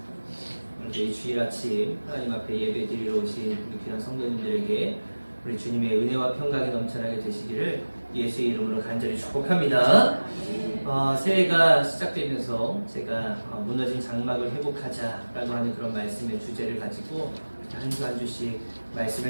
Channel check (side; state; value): both; inverted; correlation -1.00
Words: 오늘 이 주일 아침 하나님 앞에 예배 드리러 오신 우리 귀한 성도님들에게 우리 주님의 은혜와 평강이 넘쳐나게 되시기를 예수의 이름으로 간절히 축복합니다. 새해가 시작되면서 제가 무너진 장막을 회복하자라고 하는 그런 말씀의 주제를 가지고 한 주 한 주씩